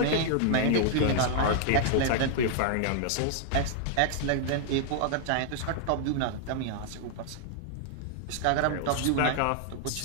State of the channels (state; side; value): different; both; correlation 0.00